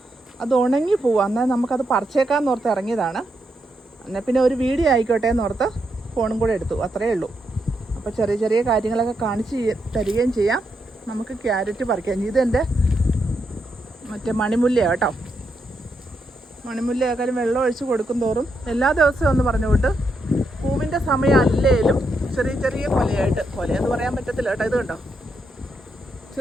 അത് ഉണങ്ങി പോവാം. എന്നാൽ നമുക്കത് പറിച്ചേക്കാമെന്ന് ഓർത്ത് ഇറങ്ങിയതാണ്. എന്നാൽ പിന്നെ ഒരു വീഡിയോ ആയിക്കോട്ടെ എന്നോർത്ത് ഫോണും കൂടെ എടുത്തു, അത്രയേ ഉള്ളൂ. അപ്പോൾ ചെറിയ കാര്യങ്ങളൊക്കെ കാണിച്ച് തരികയും ചെയ്യാം. നമുക്ക് ക്യാരറ്റ് പറിക്കാം. ഇതെൻ്റെ മറ്റേ മണിമുല്ലയാണ് കേട്ടോ. മണിമുല്ലയാക്കാലും വെള്ളം ഒഴിച്ച് കൊടുക്കും തോറും എല്ലാ ദിവസവും ഒന്ന് പറഞ്ഞുകൊണ്ട് പൂവിൻ്റെ സമയം അല്ലേലും ചെറിയ കൊലയെന്ന് പറയാൻ പറ്റത്തില്ല കേട്ടോ. ഇത് കണ്ടോ,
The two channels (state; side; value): normal; both; correlation 0.81